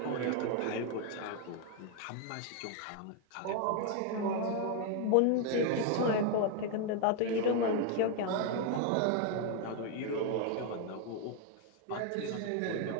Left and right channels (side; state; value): both; different; correlation 0.01